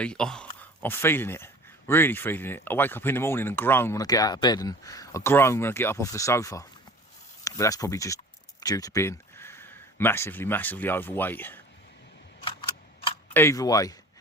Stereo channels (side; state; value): both; normal; correlation 0.44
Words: I'm feeling it. Really feeling it. I wake up in the morning and groan when I get out of bed, and I groan when I get up off the sofa. But that's probably just due to being massively overweight. Either way,